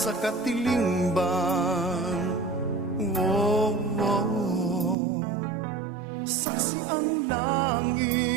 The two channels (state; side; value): drops out; left; at 5.0 s